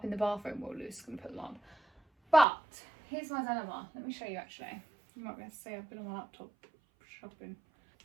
in the bathroom. Well, Lewis is going to put them on. But here's my dilemma. Let me show you actually. You might be able to see I've been on my laptop shopping.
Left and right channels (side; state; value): left; drops out; at 2.5 s